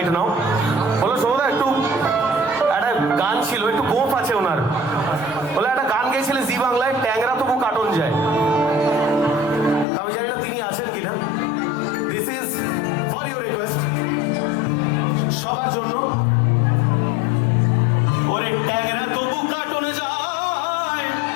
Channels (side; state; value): right; drops out; at 9.9 s